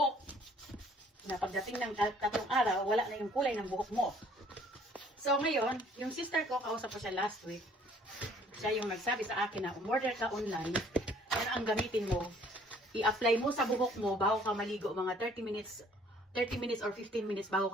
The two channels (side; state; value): both; normal; correlation 0.58